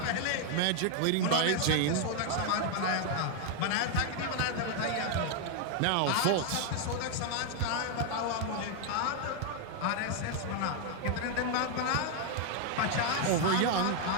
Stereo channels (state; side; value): different; both; correlation 0.00